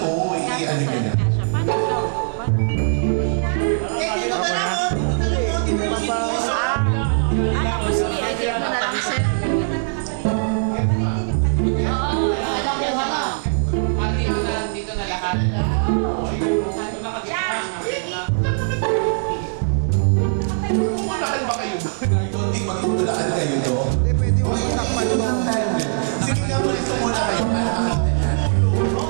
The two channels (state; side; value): silent; left; digital silence